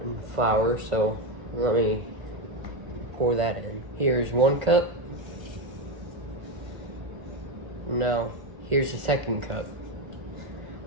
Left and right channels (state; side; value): late; left; 1.4 ms